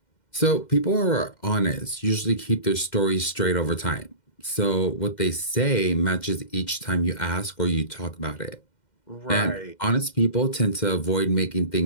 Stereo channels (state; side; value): late; right; 2.1 ms